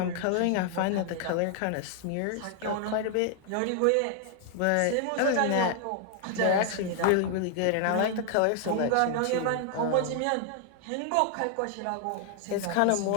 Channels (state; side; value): different; both; correlation 0.00